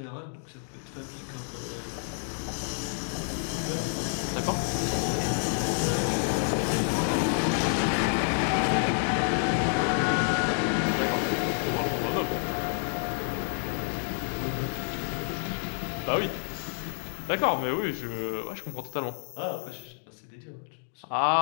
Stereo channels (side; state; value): right; silent; 59 dB below the other